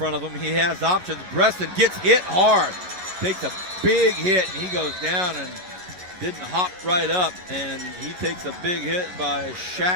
of him. He has options. Bresson gets hit hard. Takes a big hit, and he goes down and didn't hop right up. And he takes a big hit by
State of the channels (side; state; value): left; late; 11 ms